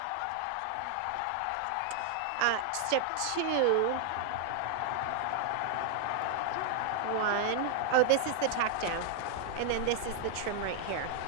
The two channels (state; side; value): different; both; correlation 0.00